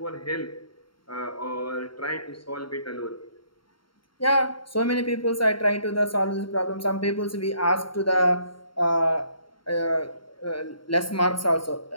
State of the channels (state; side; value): late; right; 0.73 ms